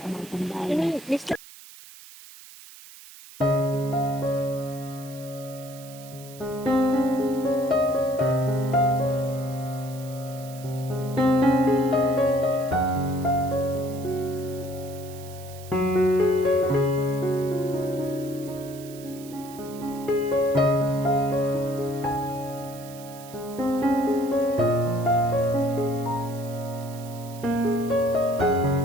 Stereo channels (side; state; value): right; noise; hiss, 18 dB below the sound